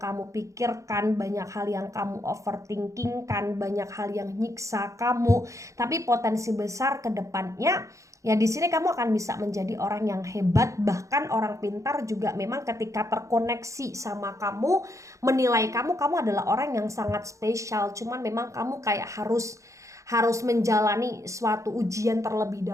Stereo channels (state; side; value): late; left; 0.15 ms